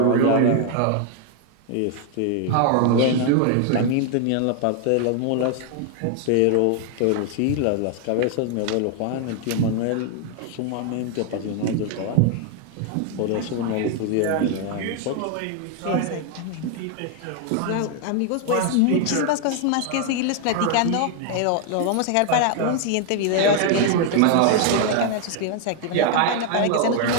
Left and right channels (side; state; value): both; different; correlation 0.00